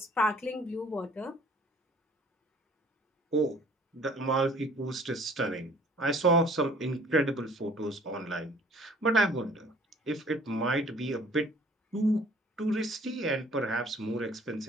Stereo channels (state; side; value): normal; both; correlation 0.54